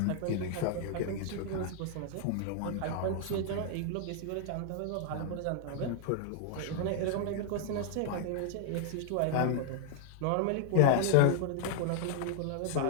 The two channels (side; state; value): both; different; correlation 0.00